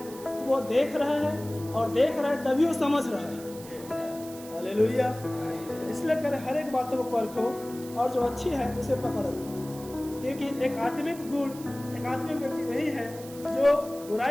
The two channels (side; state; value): right; noise; hiss, 17 dB below the sound